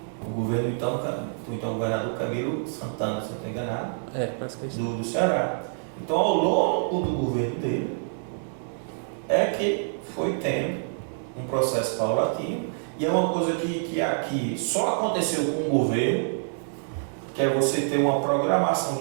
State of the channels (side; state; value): left; silent; digital silence